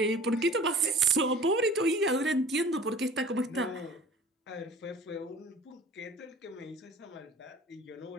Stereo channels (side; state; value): both; normal; correlation 0.46